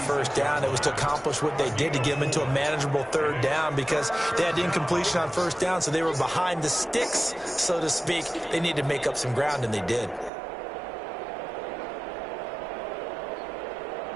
first down. It was to accomplish what they did to get them into a manageable third down because they had incompletion on first down, so they were behind the sticks, so to speak. They needed to make up some ground, and they did.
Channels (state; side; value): drops out; left; at 10.3 s